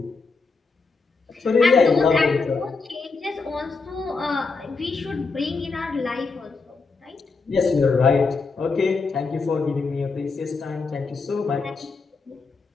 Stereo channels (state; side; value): quieter; right; 4.3 dB